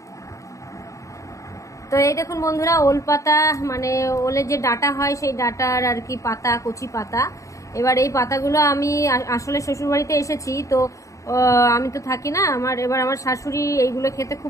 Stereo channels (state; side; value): late; right; 0.15 ms